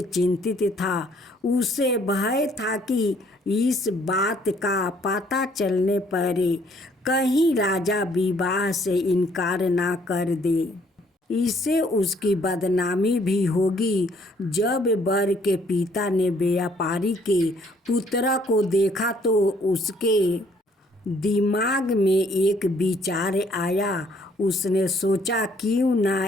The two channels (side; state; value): both; normal; correlation 0.63